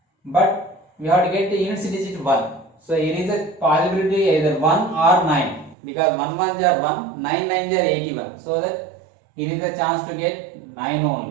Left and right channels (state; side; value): drops out; left; at 5.8 s